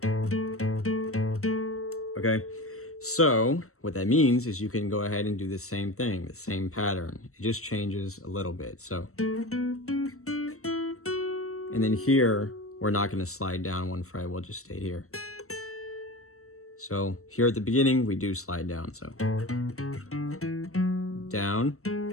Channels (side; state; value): right; late; 0.63 ms